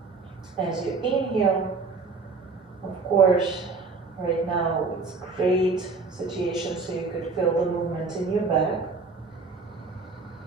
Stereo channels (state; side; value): quieter; left; 4.2 dB